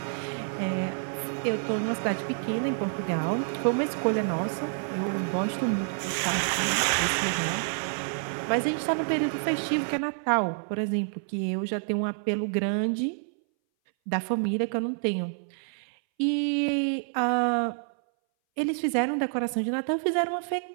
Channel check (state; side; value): silent; left; 59 dB below the other